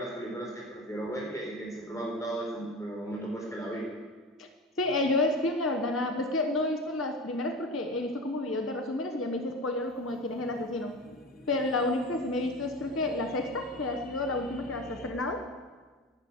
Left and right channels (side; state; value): both; normal; correlation 0.30